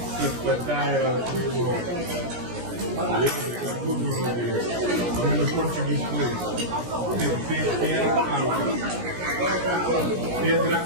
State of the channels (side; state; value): left; late; 17 ms